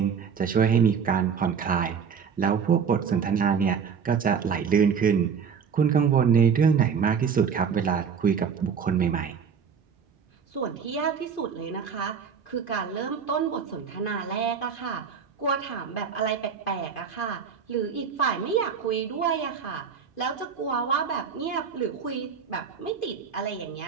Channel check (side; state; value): left; quieter; 6.6 dB